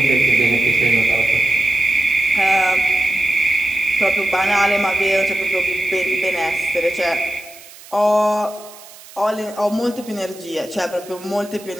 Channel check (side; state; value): right; noise; hiss, 20 dB below the sound